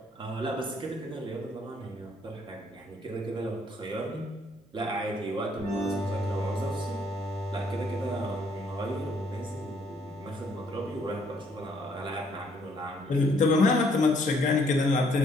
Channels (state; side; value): normal; both; correlation 0.67